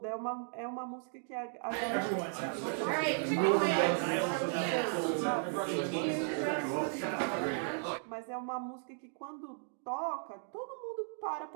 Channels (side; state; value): left; silent; 54 dB below the other